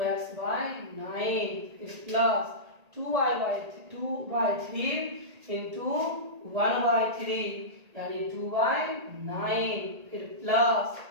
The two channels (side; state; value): left; late; 1.8 ms